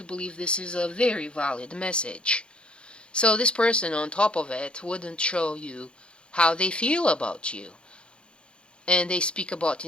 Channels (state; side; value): late; right; 0.055 ms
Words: believe this is a very valid message. So this person on top of it wouldn't show you how they feel about you. And they speak about